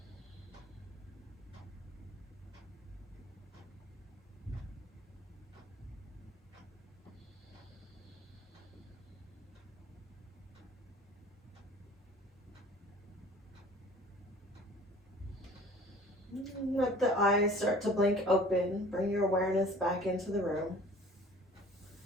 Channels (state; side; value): normal; both; correlation 0.48